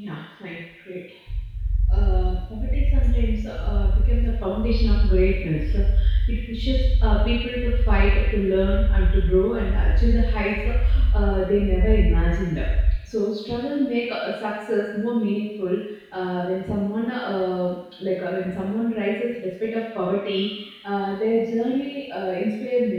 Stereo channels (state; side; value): identical; both; correlation 1.00